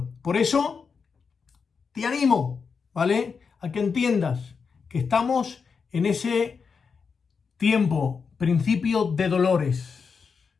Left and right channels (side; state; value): right; quieter; 5.6 dB